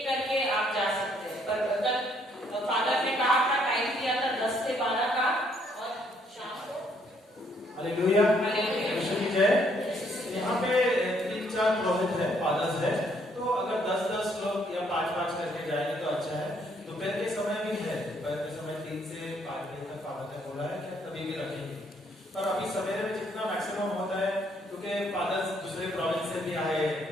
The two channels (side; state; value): both; normal; correlation 0.68